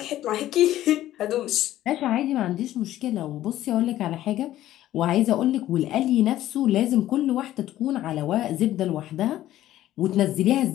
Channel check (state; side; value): quieter; right; 13.7 dB